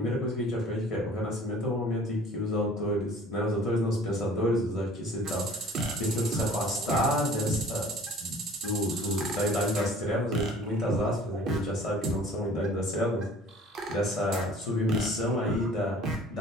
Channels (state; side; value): normal; both; correlation 0.49